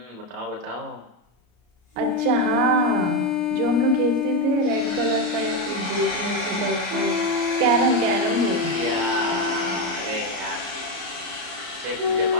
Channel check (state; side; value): late; left; 33 ms